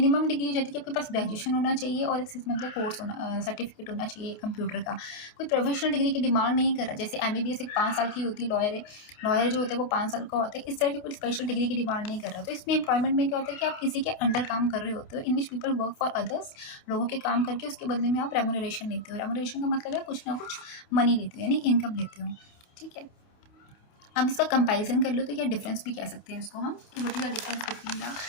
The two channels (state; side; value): late; right; 29 ms